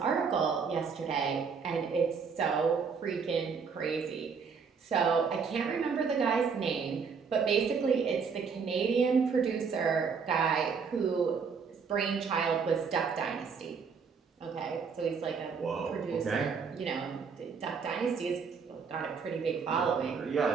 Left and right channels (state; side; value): quieter; left; 5.7 dB